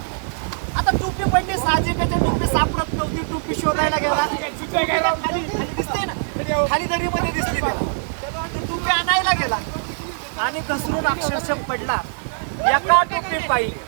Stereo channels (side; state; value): left; silent; digital silence